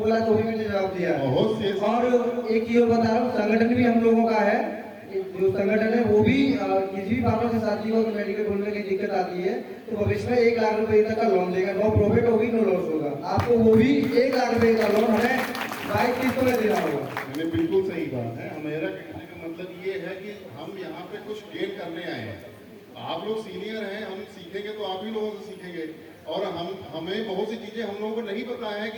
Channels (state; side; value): identical; both; correlation 1.00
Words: तो वही मैंने जवाब दिया है। और एक चीज बता रहा हूँ, संगठन भी हम लोगों का है, जो संगठन है वो भी किसी भी फार्मेसी साथी को मेडिकल खोलने की दिक्कत आती है तो भविष्य में 1 लाख रुपए तक का लोन देगा, नो प्रॉफिट होगी नो लॉस होगा, आपको वो भी 1 लाख रुपए का लोन हमें 22 किस्तों में देना होगा। मैंने बिल्कुल सही बात है। मेरा कहने का मतलब ये है कि हम यहाँ पे कुछ गेन करने आए हैं। आप लोग सीनियर हैं, हम सीखेंगे तो आप ही लोगों से सीखेंगे, और हमें बहुत सी चीजें हम लोगों को नहीं पता है